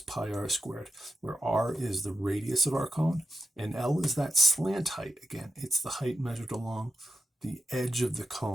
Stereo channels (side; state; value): both; normal; correlation 0.88